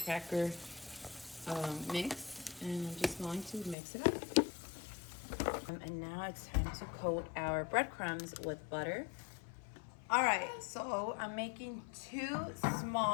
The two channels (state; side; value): drops out; right; at 3.8 s